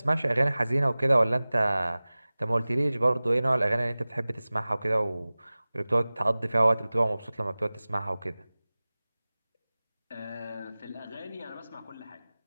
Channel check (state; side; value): inverted; both; correlation -0.99